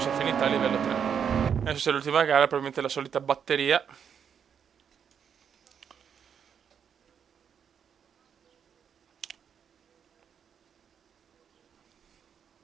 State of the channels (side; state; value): left; quieter; 7.7 dB